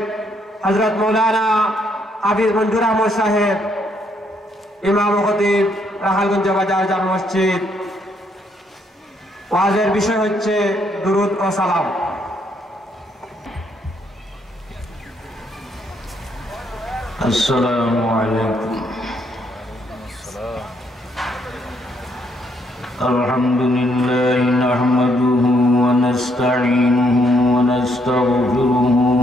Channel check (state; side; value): normal; both; correlation 0.72